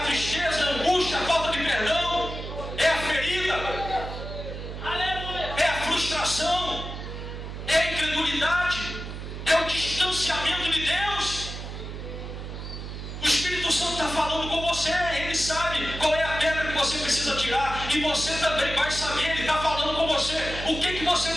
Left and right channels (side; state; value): right; noise; hum, 8 dB below the sound